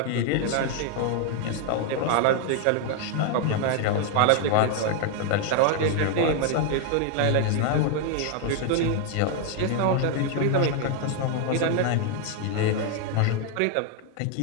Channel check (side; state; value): both; different; correlation 0.00